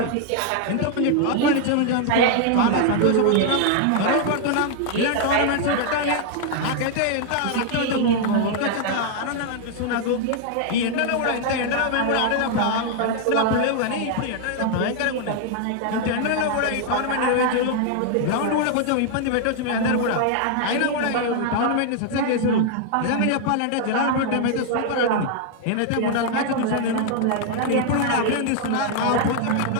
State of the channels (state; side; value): different; both; correlation 0.00